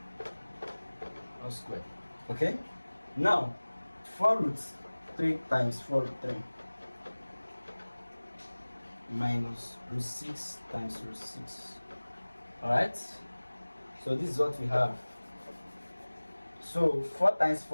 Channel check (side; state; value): both; inverted; correlation -1.00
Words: all squared. Okay, now 4 root 3 times 4 root 3 minus root 6 times root 6. All right, so this is what we have. So 4 times